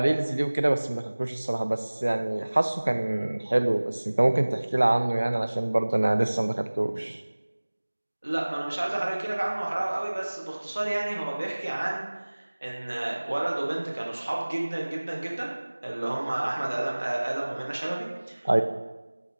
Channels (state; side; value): inverted; both; correlation -1.00